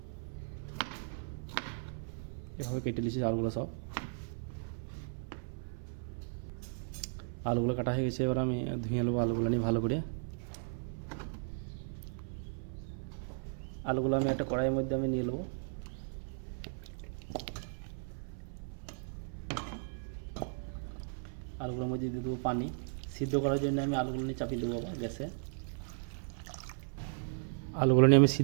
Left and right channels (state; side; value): silent; left; 54 dB below the other